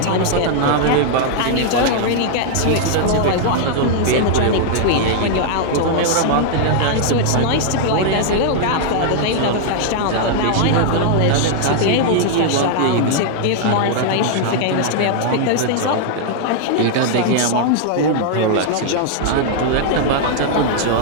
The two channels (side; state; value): both; different; correlation -0.01